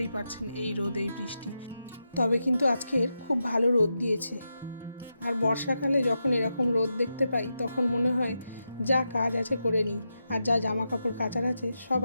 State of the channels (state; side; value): inverted; both; correlation -0.87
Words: পারছেন, এই রোদ এই বৃষ্টি। তবে কিন্তু আজকের খুব ভালো রোদ দিয়েছে। আর বর্ষাকালে যখন এরকম রোদ দেখতে পাই তখন মনে হয় যা কাজ আছে করে নিই, আর যা জামা কাপড় কাচার আছে সব